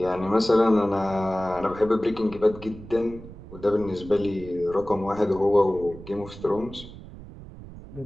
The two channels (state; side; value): noise; right; rumble, 15 dB below the sound